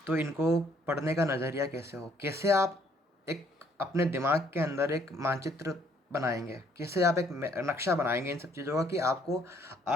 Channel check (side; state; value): both; normal; correlation 0.65